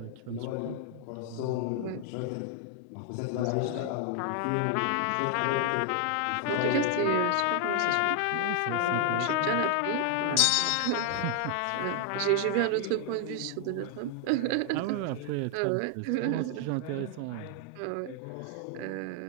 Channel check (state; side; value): different; both; correlation 0.00